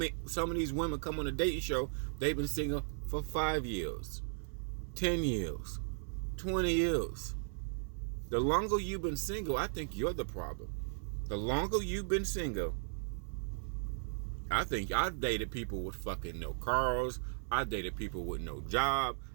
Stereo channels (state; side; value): silent; left; 53 dB below the other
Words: of these women come on a dating show, they've been single for 5 years, 10 years, 20 years. The longer you've been single, I think you're the problem. The longer you've been single, I think I've dated people with fucking no cars. I dated people with no job.